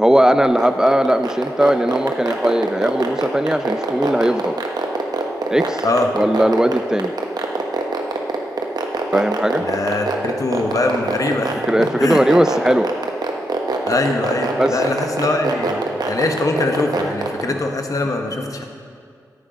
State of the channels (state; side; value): normal; both; correlation 0.85